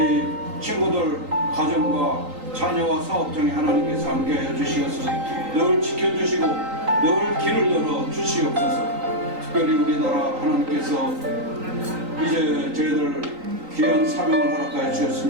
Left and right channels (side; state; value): left; late; 3.9 ms